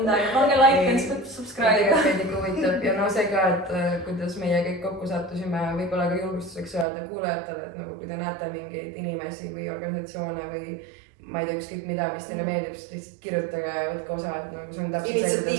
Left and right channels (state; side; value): drops out; left; at 6.9 s